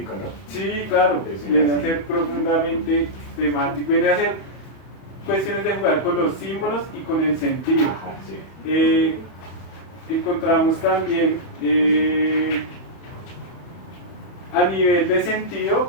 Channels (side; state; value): right; late; 31 ms